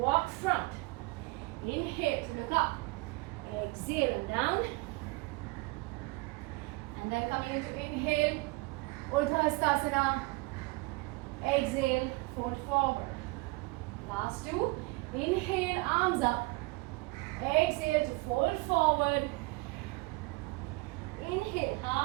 front. Inhale to look up. Exhale and down. And then coming into inhale, Urdhva Hastasana. Exhale, fold forward. Last two. Inhale, arms up. Exhale to fold forward. Inhale,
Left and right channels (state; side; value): quieter; left; 24.4 dB